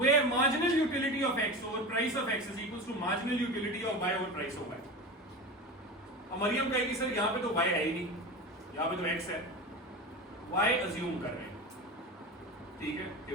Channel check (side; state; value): both; normal; correlation 0.27